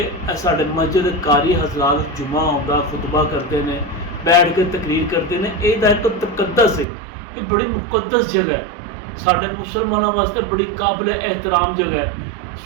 साडे मस्जिद कारी हजरात जुमा आउंदा खुतबा करते हैं, बैठ के तकरीर करते हैं। यह एक तकद्दस है, ये बड़ी मुकद्दस जगह है, साडे मुसलमानों वास्ते बड़ी काबिल एहतराम जगह है।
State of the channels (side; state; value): left; drops out; at 6.9 s